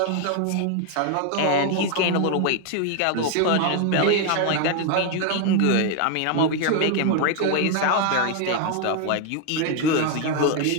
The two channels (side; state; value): both; different; correlation 0.01